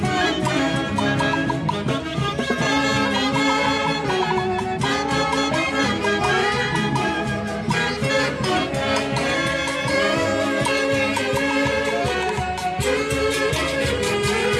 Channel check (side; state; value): both; identical; correlation 1.00